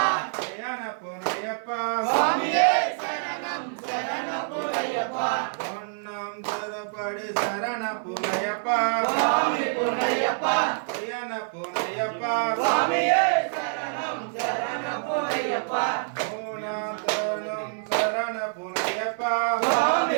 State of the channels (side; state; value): left; silent; 56 dB below the other